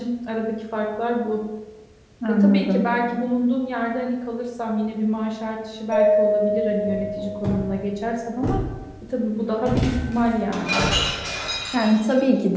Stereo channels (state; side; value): identical; both; correlation 1.00